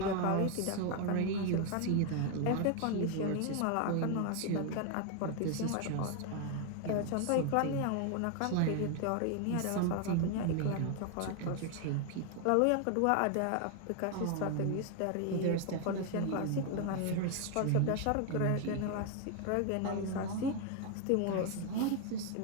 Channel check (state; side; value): different; both; correlation 0.01